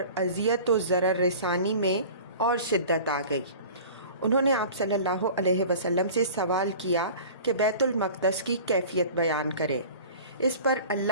اذیت و ضرر رسانی میں اور شدت آ گئی۔ انہوں نے آپ صلی اللہ علیہ وسلم سے سوال کیا کہ بیت المقدس کی کیفیت بیان کرے۔ اس پر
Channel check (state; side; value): inverted; both; correlation -0.41